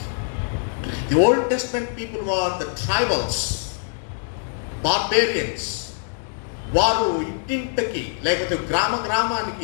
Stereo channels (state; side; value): silent; right; digital silence